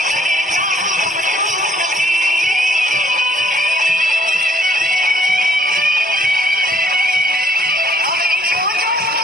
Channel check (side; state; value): both; normal; correlation 0.64